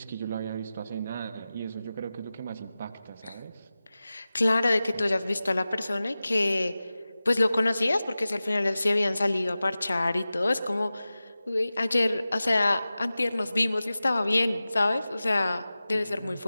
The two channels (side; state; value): both; inverted; correlation -0.95